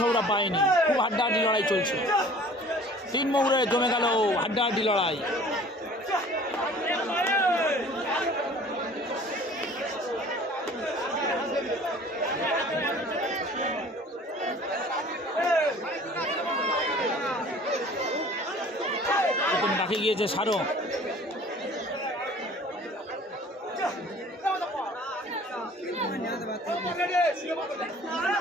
বাহিনী। খুব হাড্ডাহাড্ডি লড়াই চলছে। 3 মৌরে জমে গেল হাড্ডাহাড্ডি লড়াই। ডাকে গিয়েছে সারো।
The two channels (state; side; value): normal; both; correlation 0.48